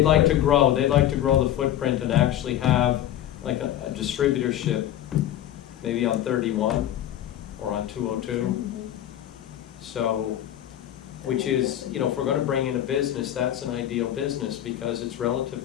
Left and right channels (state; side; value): quieter; right; 11.9 dB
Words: like to footprint. grow the footprint and actually have like a distributorship, maybe on 31 or on 202. So, which is, you know, if we're gonna bring in a business, that's an ideal business because it's